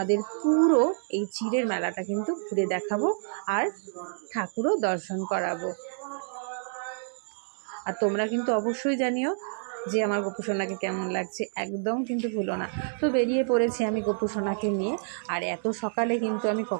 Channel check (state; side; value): silent; left; digital silence